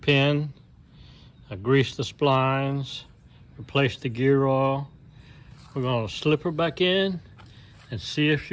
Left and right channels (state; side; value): identical; both; correlation 1.00